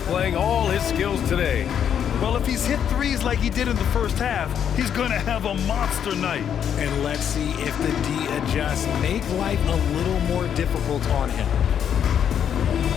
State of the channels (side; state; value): right; quieter; 8.7 dB